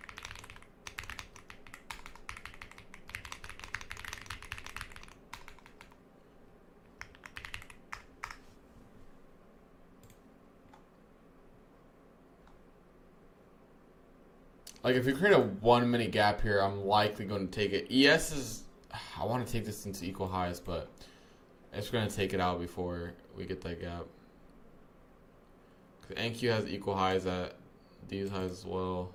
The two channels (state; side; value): identical; both; correlation 1.00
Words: Like, if we create a 1 minute gap here, I'm likely going to take it. ES is... I want to take this into equal highs, but it's going to take it out before we get that gap. Because NQ has equal highs at these highs as well.